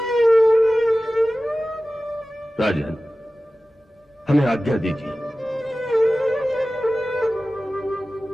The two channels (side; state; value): both; normal; correlation 0.96